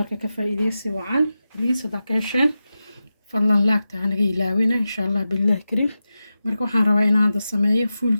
كفايديسي وعن ليس داكيشن فالله لاك تعنقي لاوينا إن شاء الله بالله كريم ماركة وحان رواينا عند السماية فول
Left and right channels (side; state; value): both; inverted; correlation -0.93